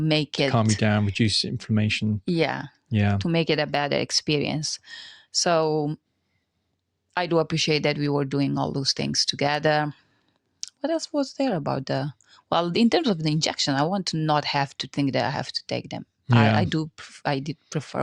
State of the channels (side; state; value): both; identical; correlation 1.00